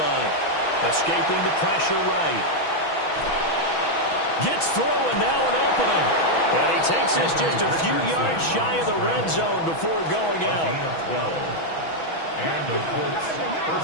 Escaping the pressure right. Gets through and now an opening. And he takes this just a few yards shy of the red zone before going out. And the Colts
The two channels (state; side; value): late; right; 6.2 ms